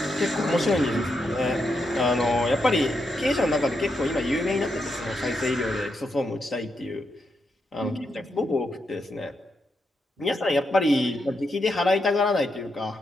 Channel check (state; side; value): normal; both; correlation 0.82